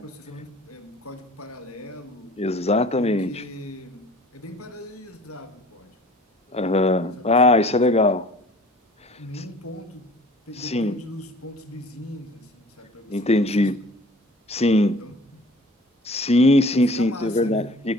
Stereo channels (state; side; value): normal; both; correlation 0.48